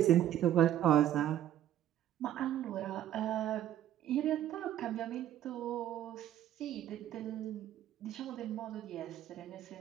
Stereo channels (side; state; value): left; quieter; 11.7 dB